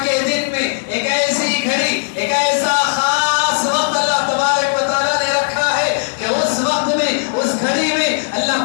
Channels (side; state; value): right; silent; digital silence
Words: کے دن میں ایک ایسی گھڑی, ایک ایسا خاص وقت اللہ تبارک و تعالیٰ نے رکھا ہے کہ اس وقت میں, اس گھڑی میں